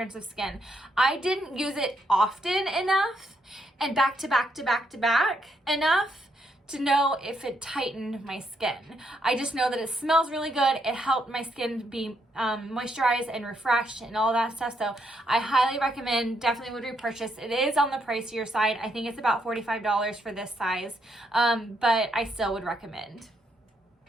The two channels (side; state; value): both; normal; correlation 0.76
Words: of skin. I didn't use it often enough and back to back enough to know if it tightened my skin. I just know that it smells really good. It helped my skin be moisturized and refreshed and all that stuff. So I highly recommend, definitely would repurchase. It is on the pricier side. I think it's about $45 for this size, but I still would recommend.